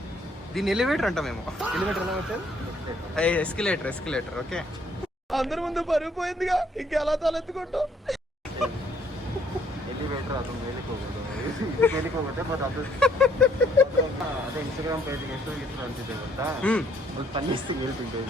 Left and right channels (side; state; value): both; normal; correlation 0.65